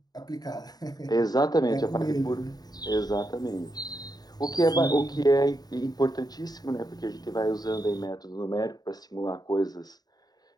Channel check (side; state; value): right; late; 0.19 ms